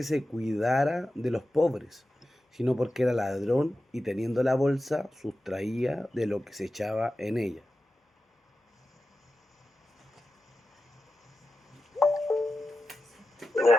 se cuidara de los pobres, sino porque era ladrón y teniendo la bolsa sustraía de lo que se echaba en ella.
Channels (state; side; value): normal; both; correlation 0.92